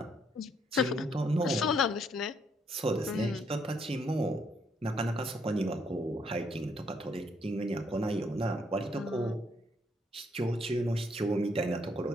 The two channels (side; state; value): both; normal; correlation 0.71